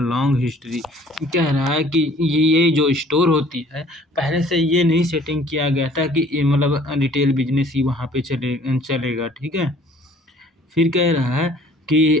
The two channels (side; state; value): both; normal; correlation 0.55